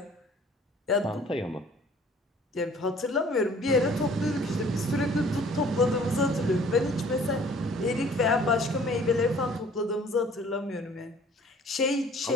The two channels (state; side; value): normal; both; correlation 0.53